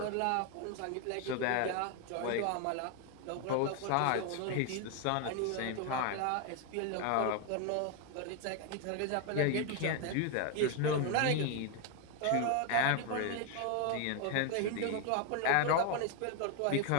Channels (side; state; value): both; different; correlation 0.01